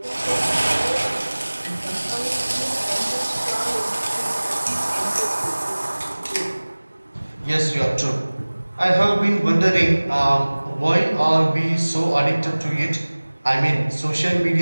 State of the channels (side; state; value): both; inverted; correlation -1.00